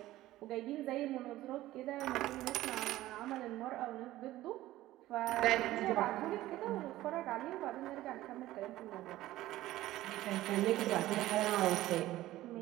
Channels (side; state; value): left; quieter; 15.7 dB